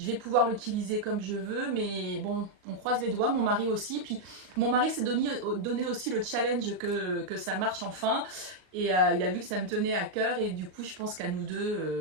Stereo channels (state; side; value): late; left; 38 ms